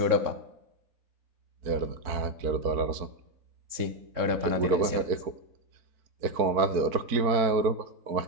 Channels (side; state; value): left; late; 3.7 ms